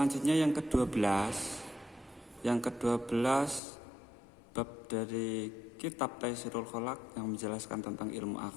yang ke-12. Yang ke-12 bab dari kitab Taisirul Kholaq yang menjelaskan tentang ilmu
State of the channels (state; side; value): drops out; right; at 3.6 s